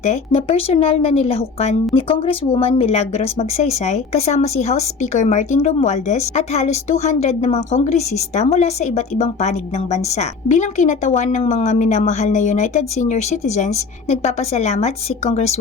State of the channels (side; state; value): right; quieter; 4.9 dB